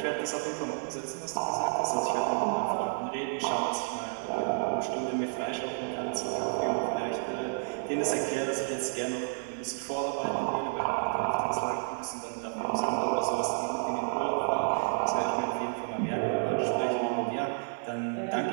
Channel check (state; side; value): silent; left; 57 dB below the other